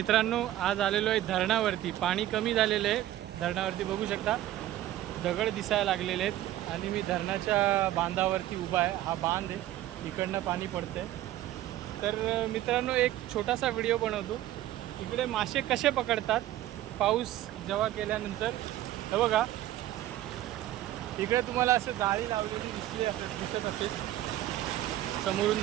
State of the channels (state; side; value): quieter; left; 13.8 dB